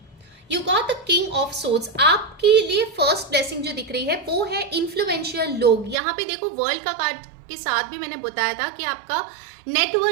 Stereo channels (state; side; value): drops out; left; at 6.0 s